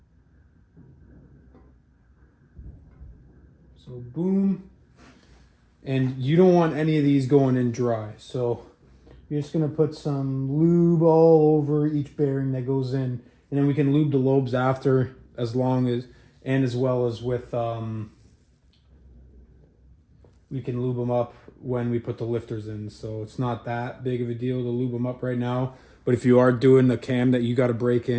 So boom. And you don't want any of these going in dry. So you're just going to put some lube all over each bearing that goes in, and then we can lube the lobes after, as well as with we can lube them up when we put the lifters in. So it's not that big of a deal to lube them up right now. But if you are doing the cam that you got to break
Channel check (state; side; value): identical; both; correlation 1.00